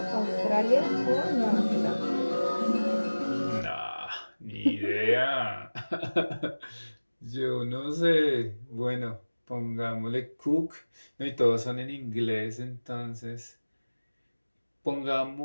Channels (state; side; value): inverted; both; correlation -1.00